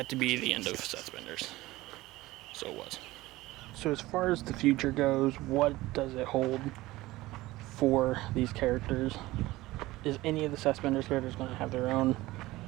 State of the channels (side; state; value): left; quieter; 18.5 dB